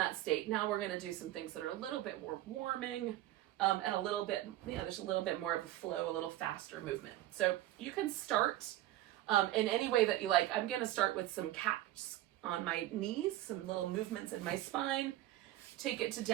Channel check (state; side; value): quieter; left; 14.9 dB